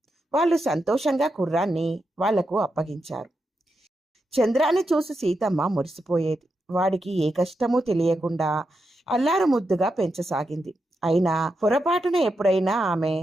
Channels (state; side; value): normal; both; correlation 0.86